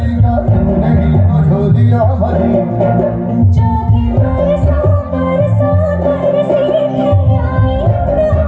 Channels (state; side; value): identical; both; correlation 1.00